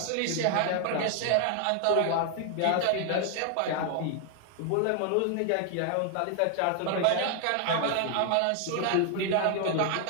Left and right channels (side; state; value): both; different; correlation 0.00